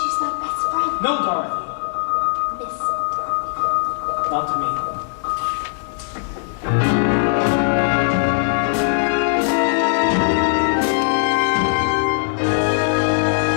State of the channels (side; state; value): right; silent; digital silence